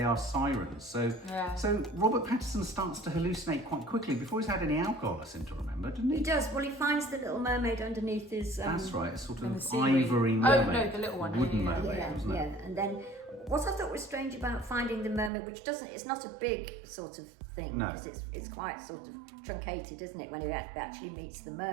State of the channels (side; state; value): left; drops out; at 15.3 s